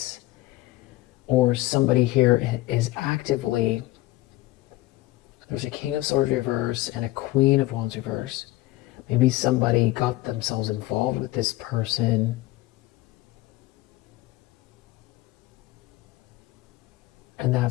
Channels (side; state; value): right; quieter; 17.9 dB